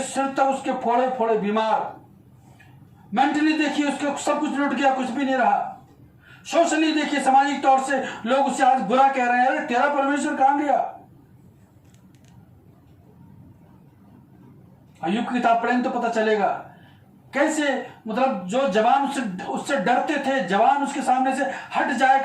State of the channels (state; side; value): identical; both; correlation 1.00